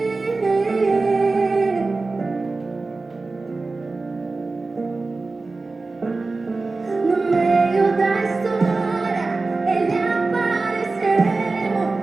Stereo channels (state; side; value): quieter; left; 3.6 dB